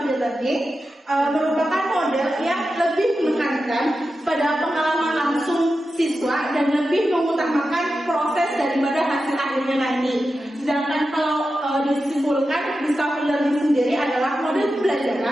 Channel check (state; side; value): normal; both; correlation 0.91